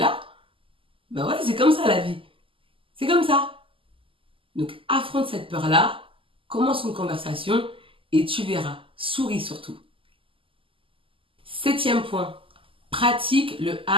Ben ouais, c'est comme ça la vie. C'est comme ça. Donc affronte cette peur-là, commence une conversation et tu verras. Souris surtout. Septième point, pratique le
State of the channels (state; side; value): late; left; 0.25 ms